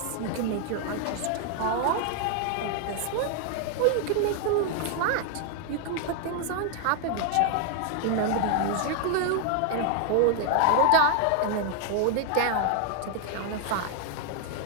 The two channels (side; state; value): both; different; correlation 0.00